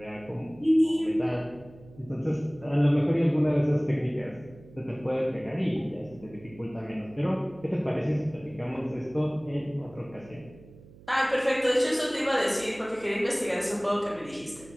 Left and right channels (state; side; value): noise; right; hum, 22 dB below the sound